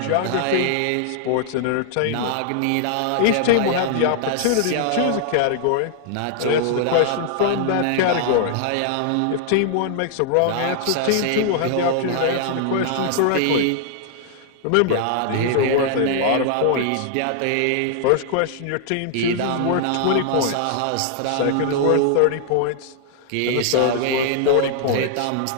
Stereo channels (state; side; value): different; both; correlation -0.01